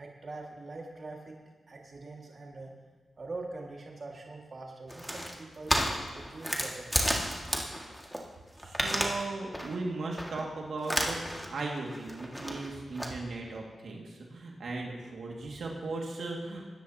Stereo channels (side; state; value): both; normal; correlation 0.94